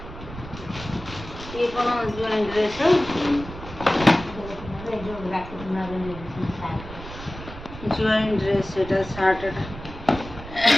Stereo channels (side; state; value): right; noise; rumble, 13 dB below the sound